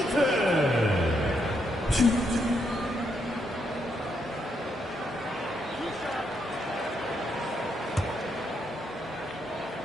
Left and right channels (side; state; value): both; normal; correlation 0.78